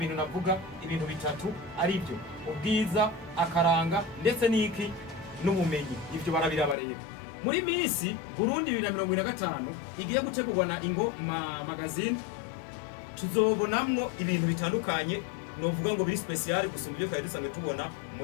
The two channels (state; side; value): drops out; right; at 6.8 s